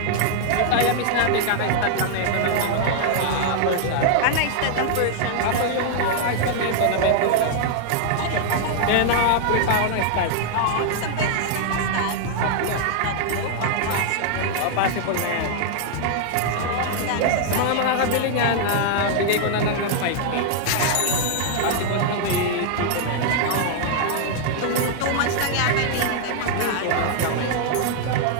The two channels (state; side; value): different; both; correlation -0.01